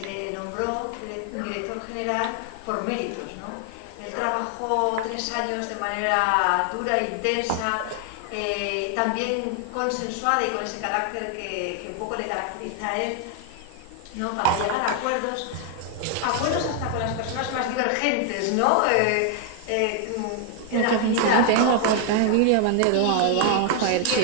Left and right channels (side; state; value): both; different; correlation 0.00